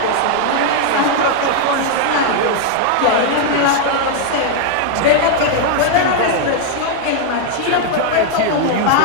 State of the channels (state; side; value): different; both; correlation 0.00